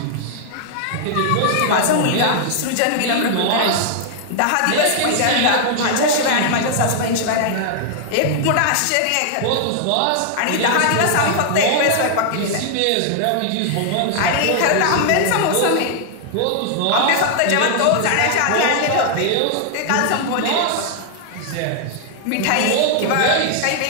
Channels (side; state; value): both; different; correlation 0.00